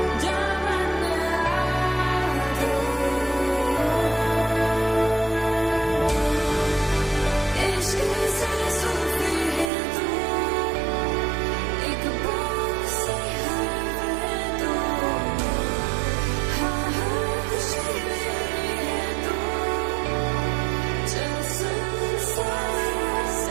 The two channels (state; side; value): drops out; left; at 9.7 s